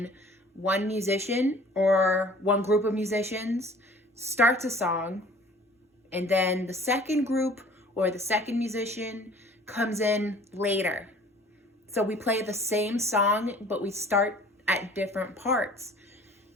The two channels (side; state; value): both; normal; correlation 0.50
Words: one musician or one group of musicians starts a song, and then the second group or the second musician comes in later. So we play the same song, but we start at different parts.